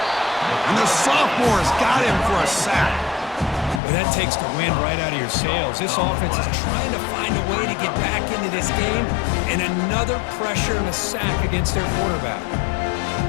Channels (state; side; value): drops out; right; at 3.8 s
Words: the sophomore's got him for a sack. Well, that takes the wind right out of your sails. This offense is trying to find a way to get back into this game, and another pressure and a sack against their quarterback.